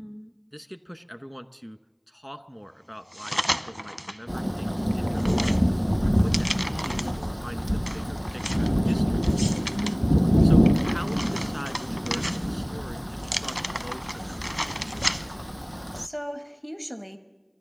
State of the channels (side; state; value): both; identical; correlation 1.00